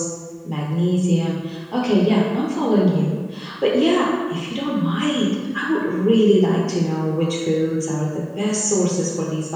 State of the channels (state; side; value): identical; both; correlation 1.00